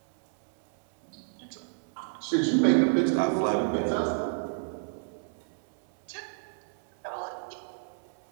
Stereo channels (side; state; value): left; silent; 58 dB below the other